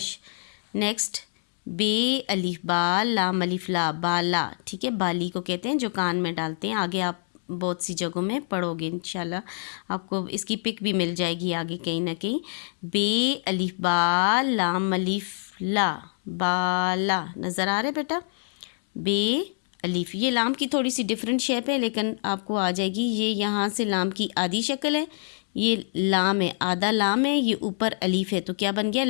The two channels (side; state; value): right; silent; 61 dB below the other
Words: नेक्स्ट बे, अलीफ, बा, लाम, अलीफ, ला, बाला। ठीक है, बाली को कहते हैं जो कान में डालते हैं। आगे आप बहुत सी जगहों में पढ़ोगे इंशाल्लाह, आपको इसकी पिक भी मिल जाएगी आगे कहीं ना कहीं। बे, अलीफ, बा, लाम, अलीफ, ला, बाला। नज़र आ रहा है बेटा? बे, अलीफ, ये लाम की थोड़ी सी डिफरेंट शेप है लेकिन आपको आ जाएगी। ये यहाँ से लाम की आधी शक्ल है, ये लाम है, आधा लाम है, ये ऊपर अलीफ है, तो क्या बन गया?